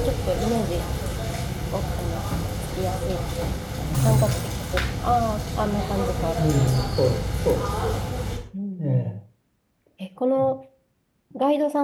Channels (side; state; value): both; identical; correlation 1.00